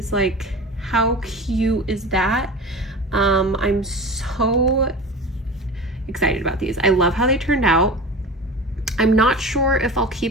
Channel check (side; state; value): both; normal; correlation 0.33